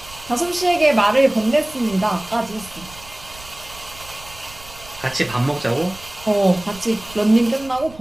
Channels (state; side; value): noise; right; rumble, 19 dB below the sound